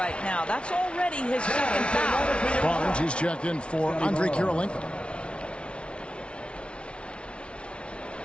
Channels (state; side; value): late; right; 0.059 ms